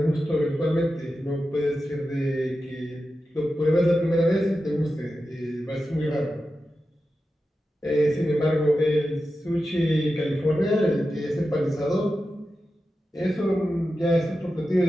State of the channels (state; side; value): normal; both; correlation 0.91